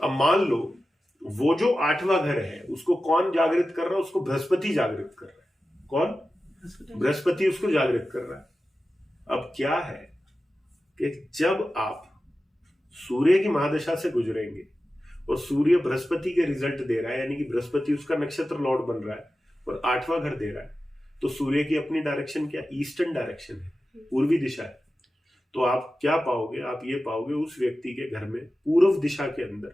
अब मान लो वो जो 8वां घर है उसको कौन जागृत कर रहा है? उसको बृहस्पति जागृत कर रहा है. कौन? बृहस्पति उसको जागृत कर रहा है. अब क्या है कि जब आप सूर्य की महादशा से गुजरेंगे और सूर्य बृहस्पति के रिजल्ट दे रहा है, यानी कि बृहस्पति उसका नक्षत्र लॉर्ड बन रहा है और 8वां घर दे रहा है, तो सूर्य की अपनी डायरेक्शन क्या? ईस्टर्न डायरेक्शन है. पूर्वी दिशा है, तो आप क्या पाओगे, आप ये पाओगे उस व्यक्ति के घर में पूर्व दिशा के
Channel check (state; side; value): normal; both; correlation 0.94